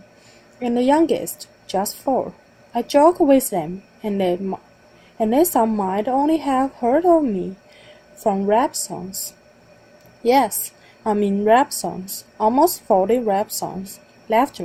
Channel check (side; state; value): both; identical; correlation 1.00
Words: and the youngest just 4. I joke with them, and they some might only have heard of me from rap songs. Yes, I mean rap songs, almost 40 rap songs.